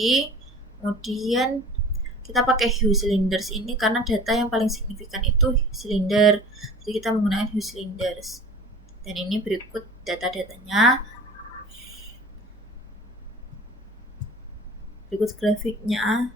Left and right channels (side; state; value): both; normal; correlation 0.42